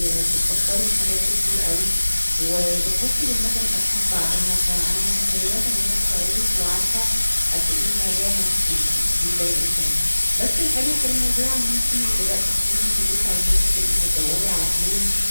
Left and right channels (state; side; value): inverted; both; correlation -1.00